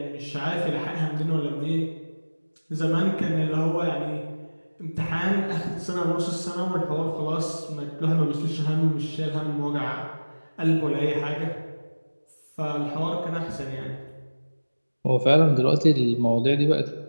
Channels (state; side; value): inverted; both; correlation -1.00